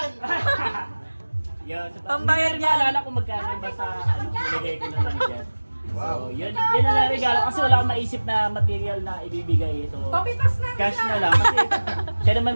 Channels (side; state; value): both; inverted; correlation -1.00